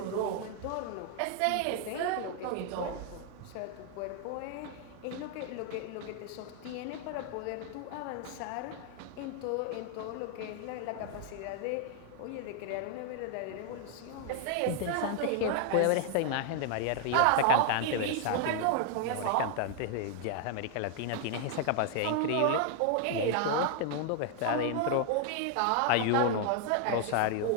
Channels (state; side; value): different; both; correlation 0.00